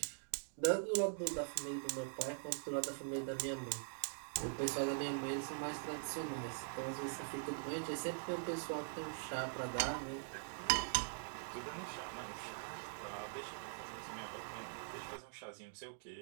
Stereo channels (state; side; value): silent; left; digital silence